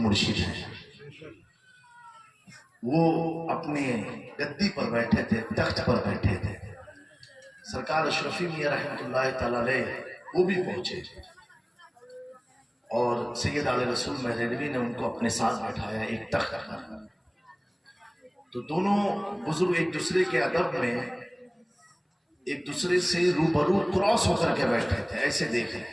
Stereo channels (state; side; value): identical; both; correlation 1.00